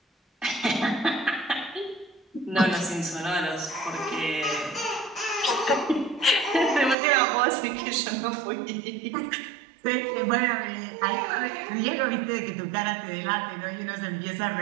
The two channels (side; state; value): left; drops out; at 7.0 s